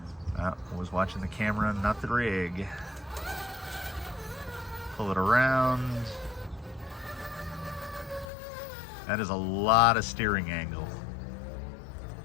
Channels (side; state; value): right; drops out; at 8.3 s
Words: I was watching the camera, not the rig. Pull it around. That is a lot of steering angle.